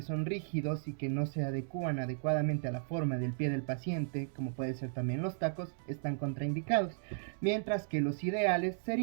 son rígidos y que no se adecúan adecuadamente a la forma del pie del paciente, como puede ser también los tacos, están contraindicados, mientras que los ideales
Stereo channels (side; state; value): left; silent; digital silence